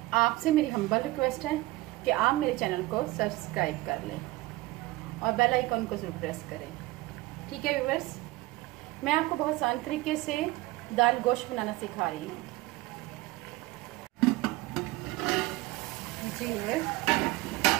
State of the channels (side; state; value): left; quieter; 19.5 dB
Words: आपसे मेरी हम्बल रिक्वेस्ट है कि आप मेरे चैनल को सब्सक्राइब कर लें और बेल आइकन को जरूर प्रेस करें। ठीक है व्यूअर्स, मैं आपको बहुत आसान तरीके से दाल गोश्त बनाना सिखा रही हूँ। जी व्यूअर्स,